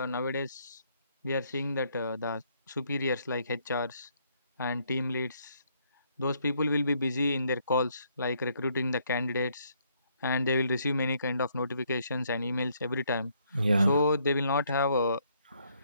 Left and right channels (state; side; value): inverted; both; correlation -0.70